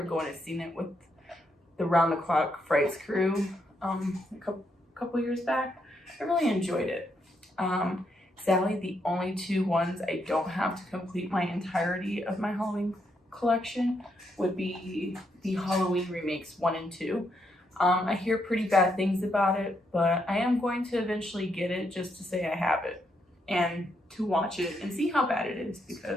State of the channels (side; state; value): both; normal; correlation 0.78